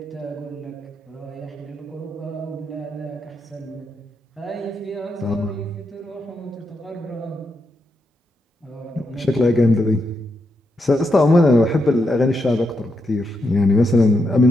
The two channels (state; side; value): normal; both; correlation 0.83